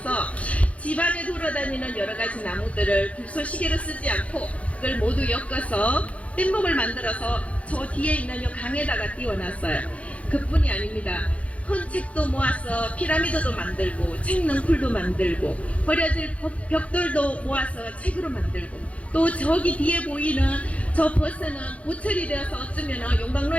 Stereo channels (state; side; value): late; right; 0.065 ms